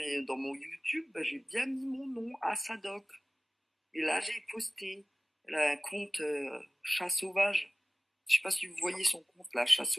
YouTube, bah, j'ai bien mis mon nom à Sadoc. Et là, j'ai posté. Elle a un compte chat sauvage. Je sais pas si vous voyez son compte, là, chat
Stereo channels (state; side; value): normal; both; correlation 0.98